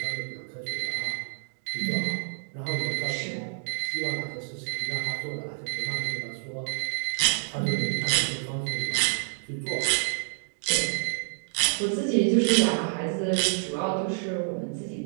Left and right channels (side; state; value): left; silent; 59 dB below the other